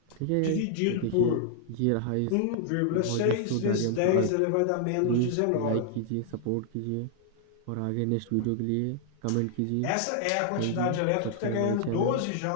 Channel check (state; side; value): different; both; correlation -0.01